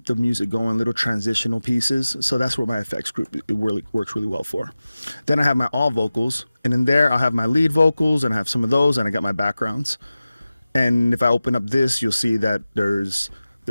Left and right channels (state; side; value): inverted; both; correlation -0.96